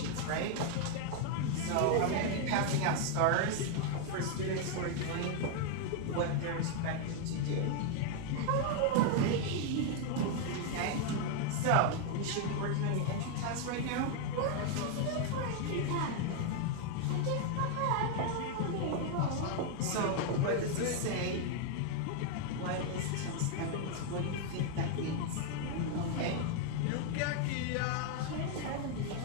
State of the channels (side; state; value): both; different; correlation 0.00